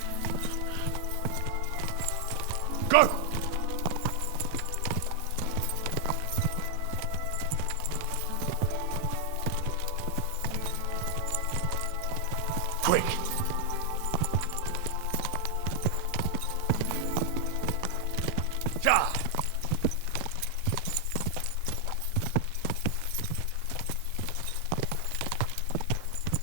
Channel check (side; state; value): both; different; correlation 0.00